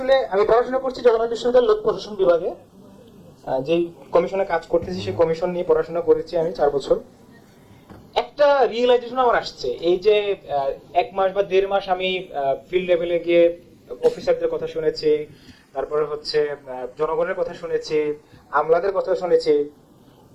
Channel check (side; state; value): both; identical; correlation 1.00